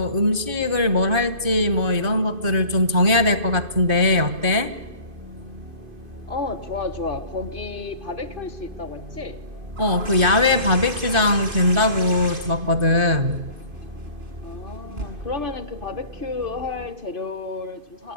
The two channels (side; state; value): left; late; 2.5 ms